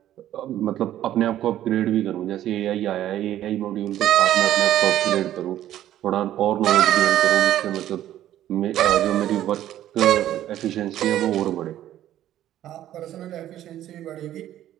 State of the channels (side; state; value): left; quieter; 12.5 dB